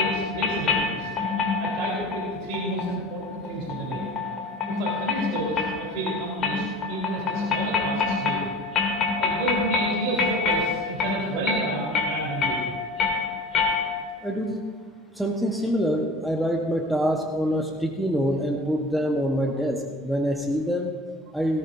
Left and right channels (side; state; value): both; normal; correlation 0.40